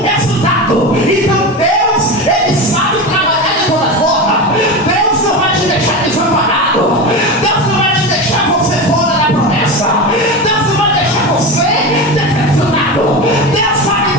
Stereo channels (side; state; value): both; normal; correlation 0.22